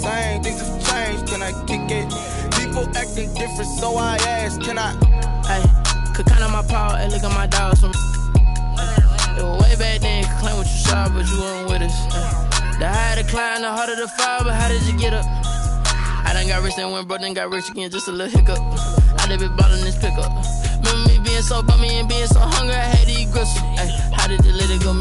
Things have changed. Can I kick it? People acting different, so I ask, can I? Hey, could count on my power and look at my dogs from. It was way back then, could claim what you saw, but you weren't with us. The higher the climb, the harder the fall, but how did you get up? I done got rich and went broke, then got rich again, just a little hiccup. I done been ballin' this pickup. Remember me being so bummy and being so hungry, I had to eat gristle. Ay, how did the lady go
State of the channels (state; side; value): identical; both; correlation 1.00